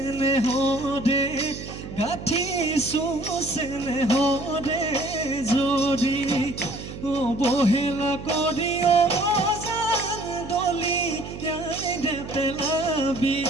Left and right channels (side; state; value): right; noise; hum, 11 dB below the sound